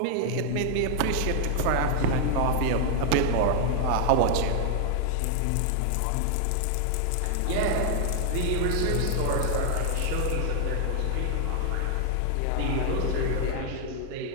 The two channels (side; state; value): both; different; correlation 0.00